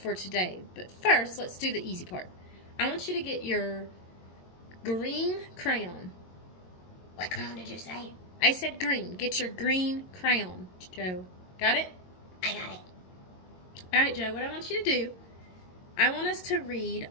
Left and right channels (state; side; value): late; right; 22 ms